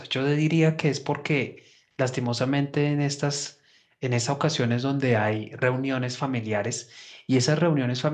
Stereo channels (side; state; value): both; identical; correlation 1.00